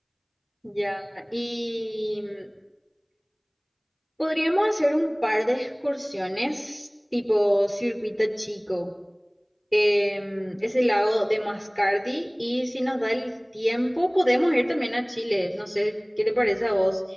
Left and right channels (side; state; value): both; identical; correlation 1.00